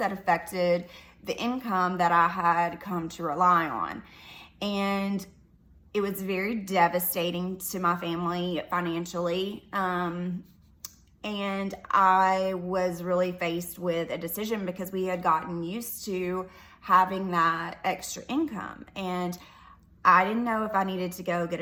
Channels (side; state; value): both; identical; correlation 1.00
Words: affected the income that I had come to rely on. And it was very devastating to my family financially. And I was really faced with a decision because we had gotten used to having that extra income. And I didn't know if I needed to go get